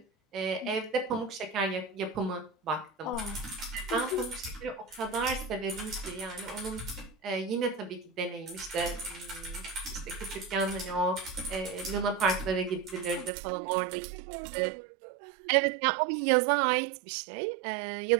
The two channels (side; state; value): left; drops out; at 13.3 s